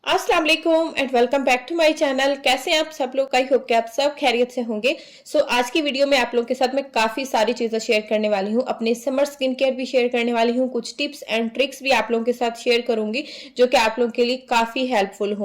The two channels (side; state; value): both; identical; correlation 1.00